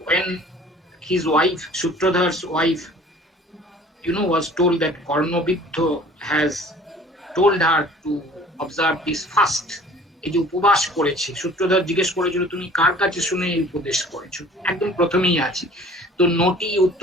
when his wife, Sutradhar's wife, was told that Karnabidha has told her to observe this fast, এই যে উপবাস করেছে, সূত্রধর জিজ্ঞেস করেছিল তুমি কার কাছে শুনে এই উপদেশ করেছো, একদম প্রথমেই আছে, তো নটি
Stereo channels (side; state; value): both; normal; correlation 0.49